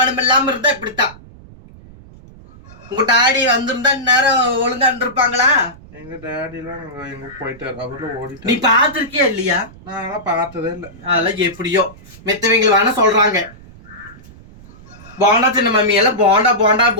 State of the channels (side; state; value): right; noise; rumble, 21 dB below the sound